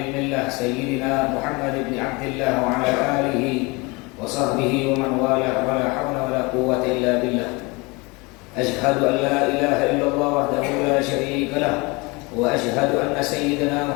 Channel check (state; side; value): quieter; right; 26.5 dB